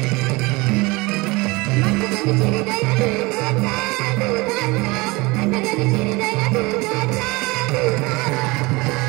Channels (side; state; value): left; quieter; 23.9 dB